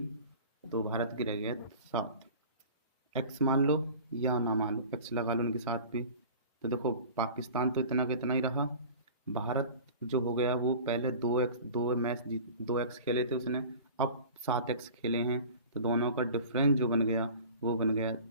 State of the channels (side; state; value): both; inverted; correlation -0.41